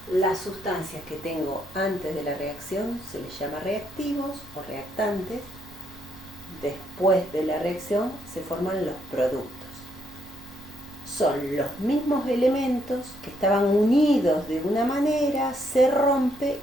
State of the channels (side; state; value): both; normal; correlation 0.74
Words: Las sustancias que tengo antes de la reacción se les llama reactivos o reactantes. Después de la reacción se forman los productos. Son los mismos elementos que estaban unidos de una manera, se rompe